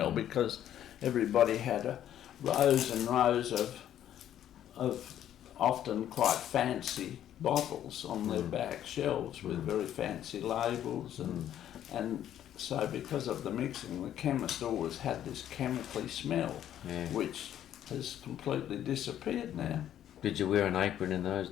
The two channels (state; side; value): quieter; right; 11.0 dB